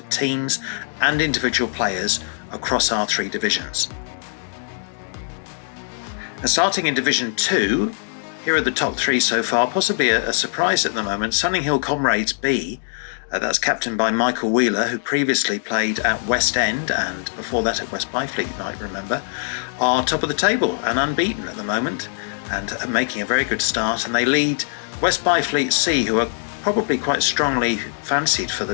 teams and individual players across our 3 divisions. And starting in Division 2, here are the top 3 so far, possibly a surprise at the moment. Sunninghill Comrades B, that's captained by Michael Wheeler, who previously played at West End and before that at West Byfleet, you might remember, are top of the table and unbeaten at the moment and are making a very good start. And they lead West Byfleet C, who are probably quite strongly fancied for the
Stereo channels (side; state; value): right; silent; digital silence